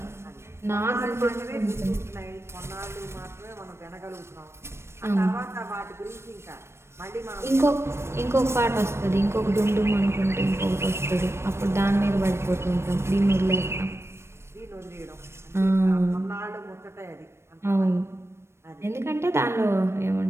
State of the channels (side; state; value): left; late; 0.13 ms